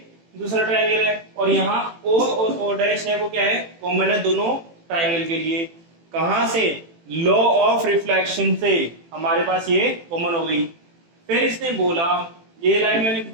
दूसरा ट्रायंगल है, और यहाँ O और O डैश है वो क्या है, कॉमन है दोनों ट्रायंगल के लिए। कहां से, लॉ ऑफ रिफ्लेक्शन से हमारे पास ये कॉमन हो गई। फिर इसने बोला, ये लाइन मैंने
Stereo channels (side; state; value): left; late; 18 ms